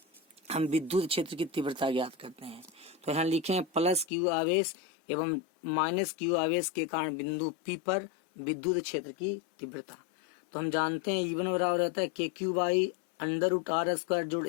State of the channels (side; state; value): right; drops out; at 4.0 s